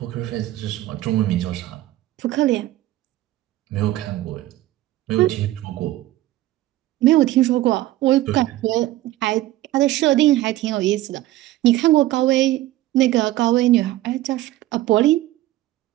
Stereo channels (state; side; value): quieter; left; 15.7 dB